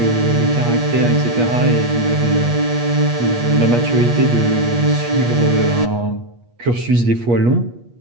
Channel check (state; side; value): late; left; 8.4 ms